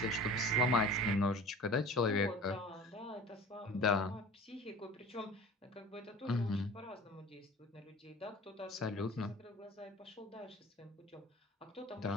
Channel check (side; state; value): both; normal; correlation 0.42